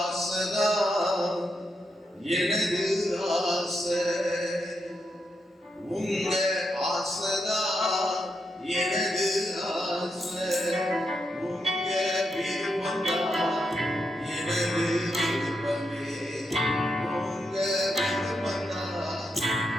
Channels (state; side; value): normal; both; correlation 0.83